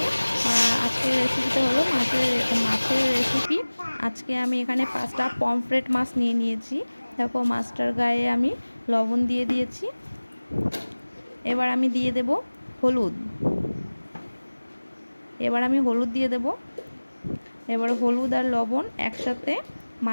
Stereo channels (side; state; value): both; inverted; correlation -1.00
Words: আজকের রেসিপিটা হলো মাছের রেসিপি। আজকে আমি এখানে 5টা পমফ্রেট মাছ নিয়ে নিয়েছি। দেখো, মাছটার গায়ে আমি লবণ দিয়ে দিয়েছি। এবার আমি দিয়ে দেব হলুদ। হলুদ দিয়ে দেব। এবার হলুদ আর লবণ একসাথে